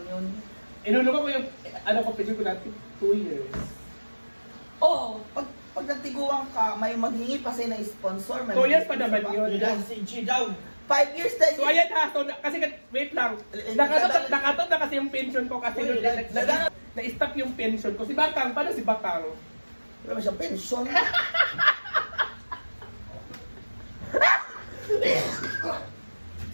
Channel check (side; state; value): both; inverted; correlation -1.00